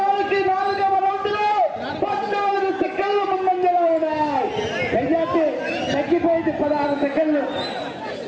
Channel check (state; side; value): identical; both; correlation 1.00